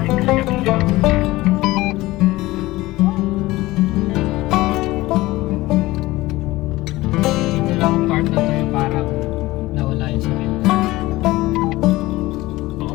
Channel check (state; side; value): quieter; right; 18.8 dB